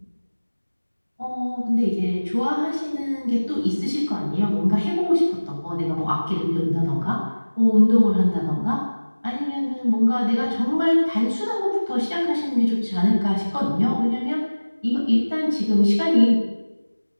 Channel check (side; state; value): both; inverted; correlation -1.00